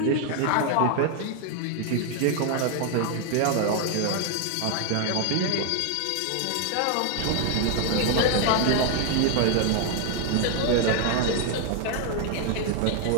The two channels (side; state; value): both; different; correlation 0.00